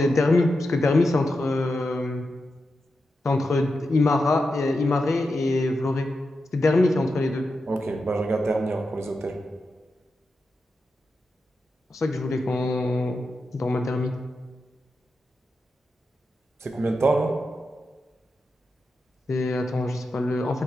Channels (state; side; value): normal; both; correlation 0.88